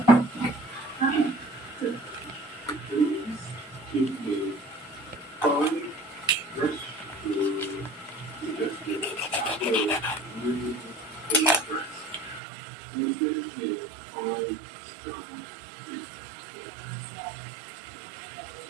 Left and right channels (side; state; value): left; drops out; at 12.4 s